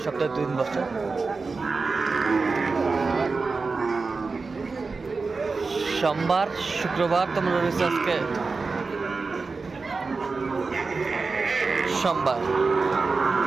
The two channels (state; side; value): quieter; left; 4.2 dB